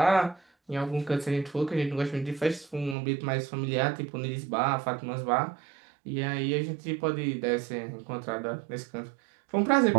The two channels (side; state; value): left; drops out; at 3.0 s